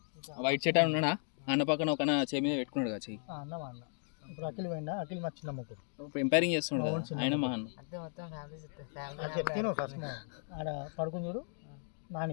వైట్ షర్ట్ అని ఉన్నాడా? అన్న పక్కన ఒక చేయి మీద పెట్టుకున్నాడు కదా చెయ్యి. అన్న మా అన్న ఇప్పుడు అఖిల్ పోయిందా? అఖిల్ మా చిన్న ముగ్గురు ఇప్పుడు ఎంపైరింగ్ చేస్తున్నాడు కదా, ఆయన మా అన్న. చెప్తాను ఫస్ట్ ఆడ పడుకుని చూడు.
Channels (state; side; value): silent; right; 54 dB below the other